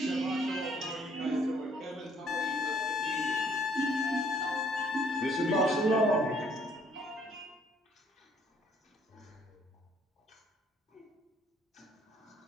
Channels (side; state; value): both; normal; correlation 0.63